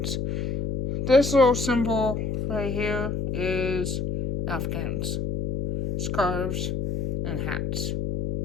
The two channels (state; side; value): noise; left; hum, 2 dB below the sound